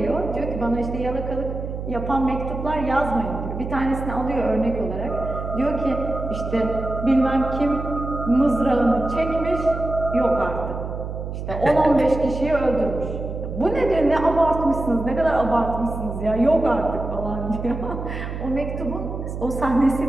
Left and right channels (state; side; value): noise; right; hum, 6 dB below the sound